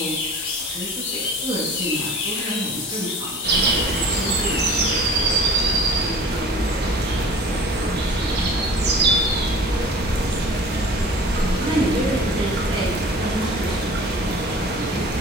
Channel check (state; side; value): normal; both; correlation 0.43